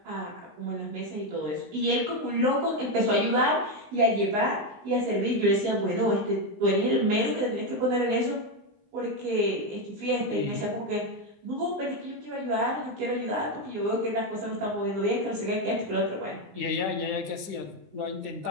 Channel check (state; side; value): late; left; 20 ms